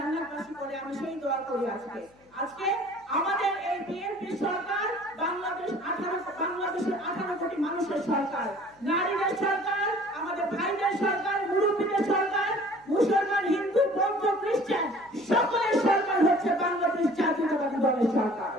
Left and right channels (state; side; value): noise; left; hum, 30 dB below the sound